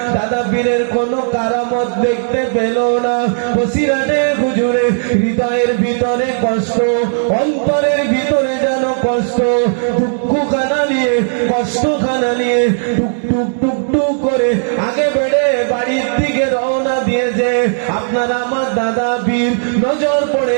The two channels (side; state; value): left; silent; digital silence